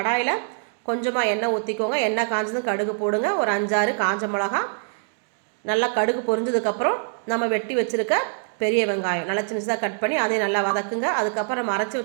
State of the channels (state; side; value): silent; left; digital silence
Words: கொஞ்சமாக எண்ணெய் ஊற்றிக்கோங்க. எண்ணெய் காஞ்சதும் கடுகு போடுங்க. ஒரு 5-6 காஞ்ச மிளகா. நல்லா கடுகு பொரிஞ்சதுக்கப்புறம் நம்ம வெட்டி வச்சுருக்க பெரிய வெங்காயம் நல்லா சின்னதாக கட் பண்ணி அதையும் நல்லா வதக்குங்க. அதுக்கப்புறம் நம்ம அரைச்சி